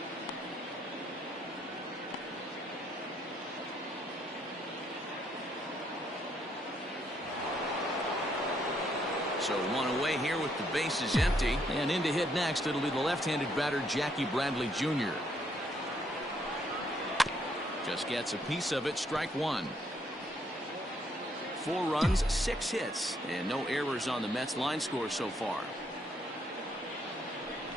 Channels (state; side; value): normal; both; correlation 0.72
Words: So 1 away here with the bases empty. And in to hit next, it'll be the left-handed batter, Jackie Bradley Jr. Just gets a piece of it. Strike 1. 4 runs, 6 hits, and no errors on the Mets line score so far.